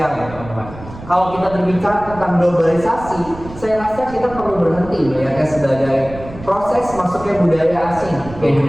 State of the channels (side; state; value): right; noise; rumble, 15 dB below the sound